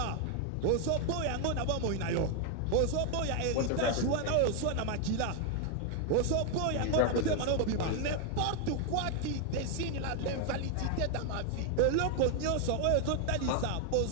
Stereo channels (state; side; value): different; both; correlation 0.00